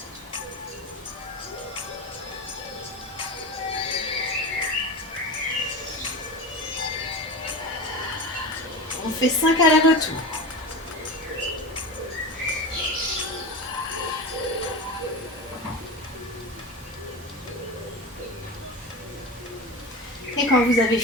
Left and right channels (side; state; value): both; normal; correlation 0.26